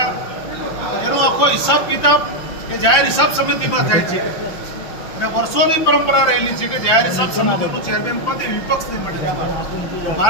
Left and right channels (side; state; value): right; late; 6.0 ms